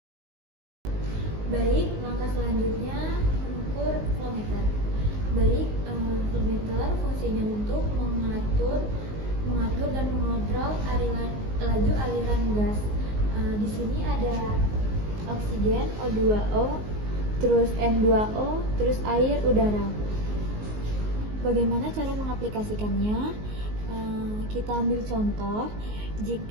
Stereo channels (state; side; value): late; left; 19 ms